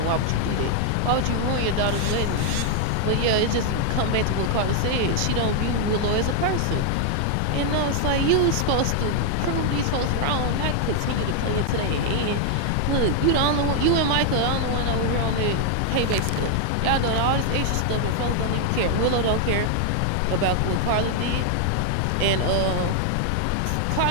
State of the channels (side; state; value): both; different; correlation 0.00